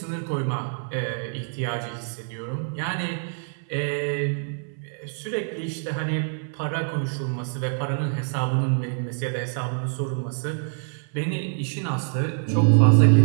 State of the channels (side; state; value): left; silent; 60 dB below the other